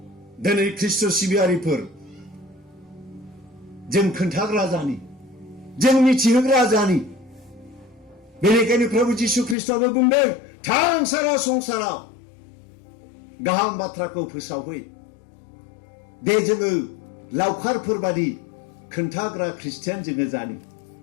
दिनै ख्रिस्ट' सिबियारिफोर जों खोन्थाग्रा जानि जों मिथिहोग्रा जानि बेनिखायनो प्रभु जिसु ख्रिस्टआबो बुंदों थां सारा संसाराव गाहाम बाथ्राखौ फोसावहै दे जोङो लावखारफोर बादि खोन्थाग्रा ख्रिस्टियान जोङो जानि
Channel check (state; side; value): drops out; right; at 9.6 s